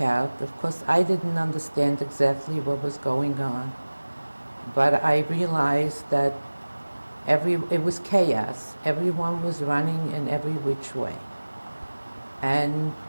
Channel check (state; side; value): inverted; both; correlation -1.00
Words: out, of course, I didn't understand exactly what was going on, but I realized that it was chaos. Everyone was running in every which way. And